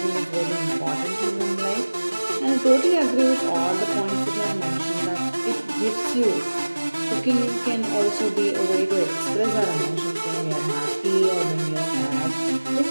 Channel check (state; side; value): inverted; both; correlation -1.00